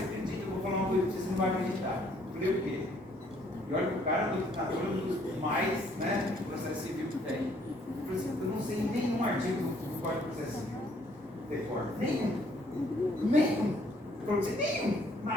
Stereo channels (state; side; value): normal; both; correlation 0.64